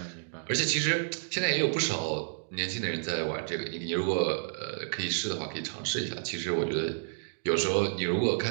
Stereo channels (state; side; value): silent; left; digital silence